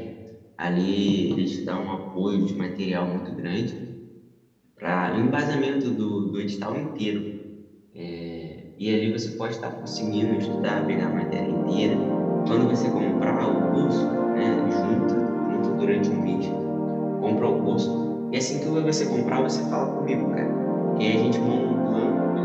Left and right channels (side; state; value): both; identical; correlation 1.00